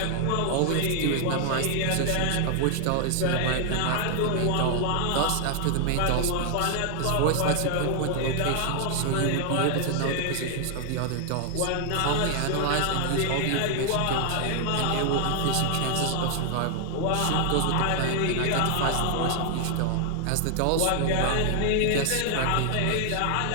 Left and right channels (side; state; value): both; different; correlation 0.00